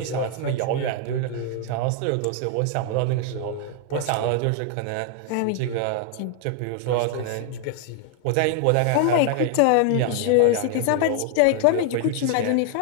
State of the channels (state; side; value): different; both; correlation 0.00